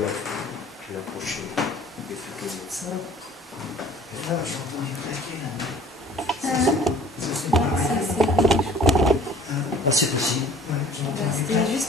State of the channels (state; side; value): normal; both; correlation 0.50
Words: vais approcher des photos de ça. Et là, j'ai entendu claquer là. Ça, c'est Ça, pareil. Ah, c'est possible. Ouais, j'ai entendu C'était claquer.